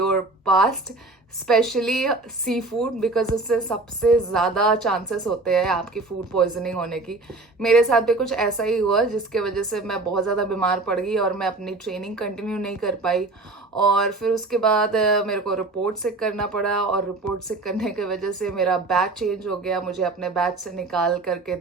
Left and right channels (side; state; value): left; quieter; 3.2 dB